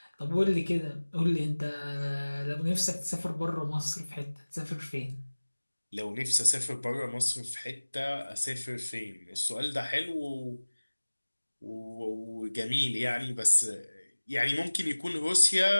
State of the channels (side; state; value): both; inverted; correlation -1.00